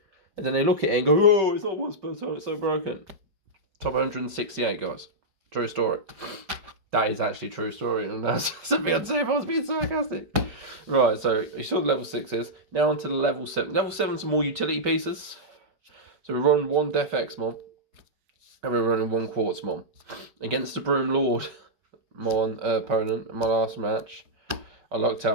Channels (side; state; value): left; late; 5.2 ms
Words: And then they look at it and go, oh, it's not once per turn, it's so broken. Top 168, guys. True story. That is actually a true story, and that's something I'd say if I was being sarcastic. Right, so you saw the level 6s. Now onto the level 7. Level 7's more utility pieces. So we run 1 Def X Mon, and we're running 1 Quartz Mon. Against the Broom Lord Mon opponent in my last match, I lucked